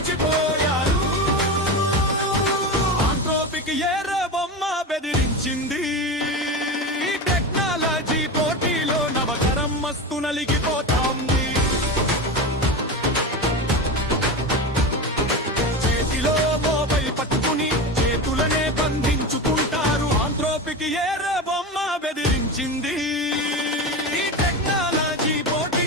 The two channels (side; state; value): both; normal; correlation 0.23